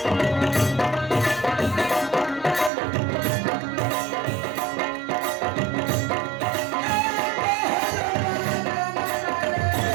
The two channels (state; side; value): drops out; left; at 2.7 s